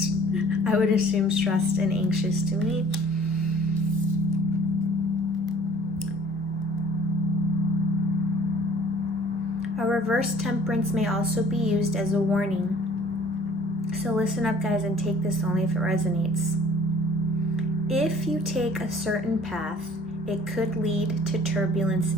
I would assume stressed and anxious to me. A reverse Temperance may also be used as a warning. So listen up, guys, and take this only if it resonates. If you take a certain path, it could lead to turbulence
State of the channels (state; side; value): normal; both; correlation 0.53